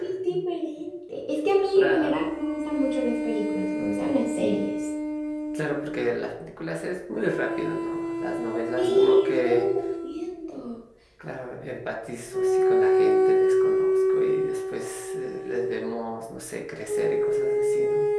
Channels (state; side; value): identical; both; correlation 1.00